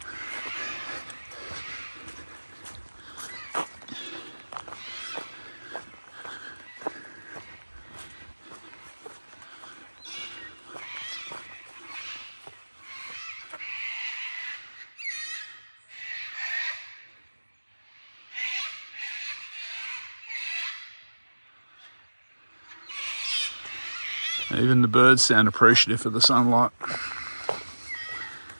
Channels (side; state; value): both; inverted; correlation -1.00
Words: Even the birds sound appreciative of the sunlight.